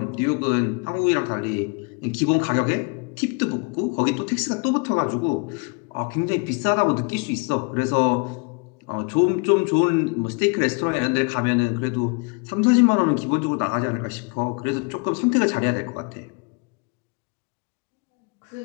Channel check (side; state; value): right; quieter; 32.3 dB